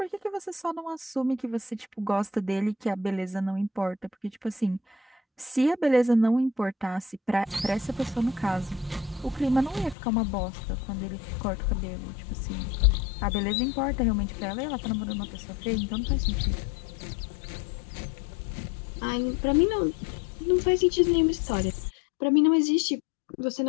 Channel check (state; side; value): drops out; right; at 10.0 s